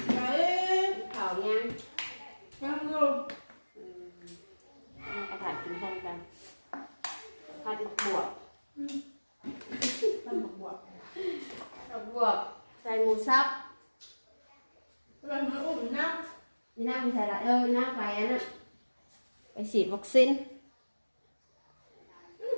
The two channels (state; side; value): inverted; both; correlation -1.00